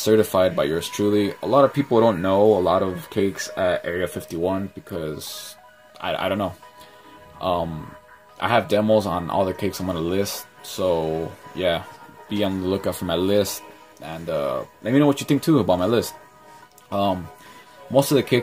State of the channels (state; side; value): identical; both; correlation 1.00